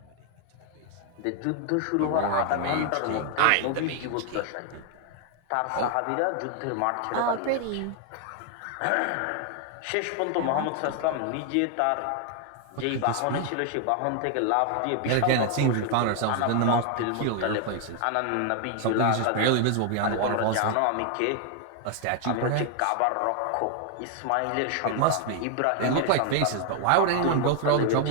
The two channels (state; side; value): different; both; correlation 0.00